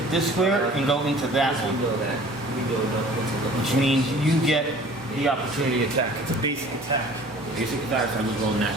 this square and go into that we one, know that. We know that. which means you get the opportunity attack. It's a basic attack. Basic attacks. I just roll net.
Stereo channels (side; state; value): both; normal; correlation 0.48